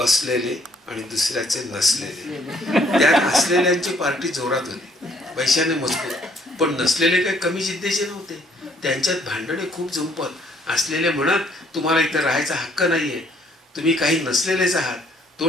असलेले आणि दुसऱ्याचे नसलेले. त्यात असलेल्यांची पार्टी जोरात होती, पैशाने मजबूत. पण नसलेले काही कमी जिद्दीचे नव्हते. त्यांच्यात भांडणे खूप झुंपत. असलेले म्हणत, तुम्हाला इथं राहायचा हक्क नाहीये, तुम्ही काही नसलेलेच आहात,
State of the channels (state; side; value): normal; both; correlation 0.64